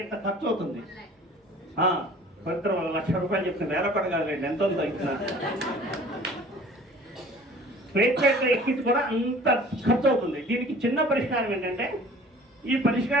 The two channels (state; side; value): normal; both; correlation 0.48